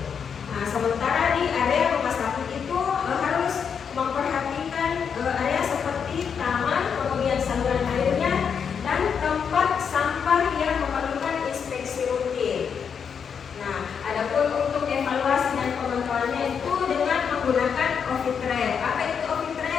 Nah, sementara di area rumah sakit itu harus memperhatikan area seperti taman, kemudian saluran airnya dan tempat sampah yang memerlukan inspeksi rutin. Nah, adapun untuk evaluasi dan pemantauannya itu dengan menggunakan office trail. Apa itu office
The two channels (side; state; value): right; quieter; 6.9 dB